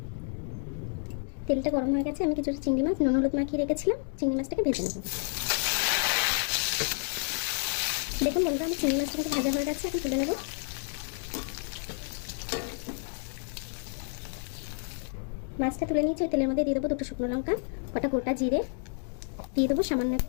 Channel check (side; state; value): right; silent; 58 dB below the other